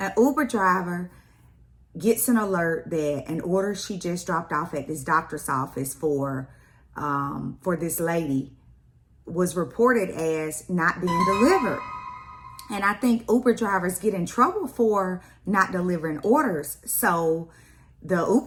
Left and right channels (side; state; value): both; identical; correlation 1.00